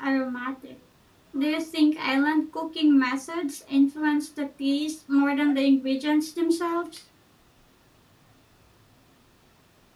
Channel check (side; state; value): both; identical; correlation 1.00